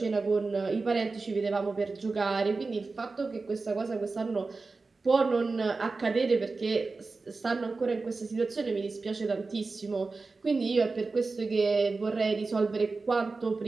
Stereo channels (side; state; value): left; quieter; 3.9 dB